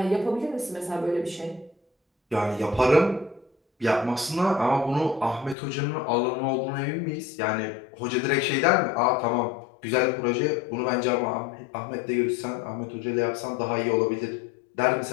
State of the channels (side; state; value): right; drops out; at 5.6 s